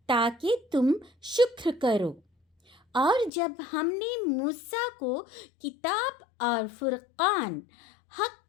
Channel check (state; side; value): drops out; right; at 3.3 s